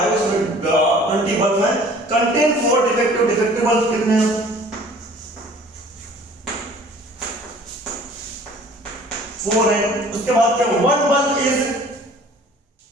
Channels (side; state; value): both; normal; correlation 0.50